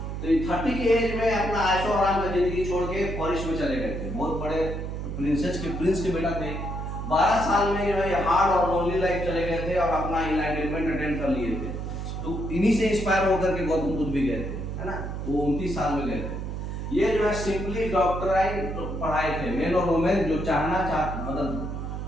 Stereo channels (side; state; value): right; noise; hum, 5 dB below the sound